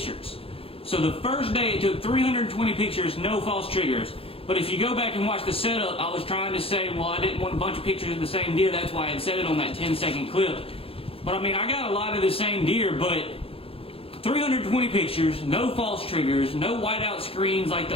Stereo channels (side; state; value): right; late; 0.27 ms